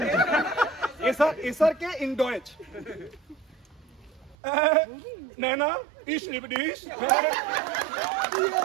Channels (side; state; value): left; drops out; at 4.4 s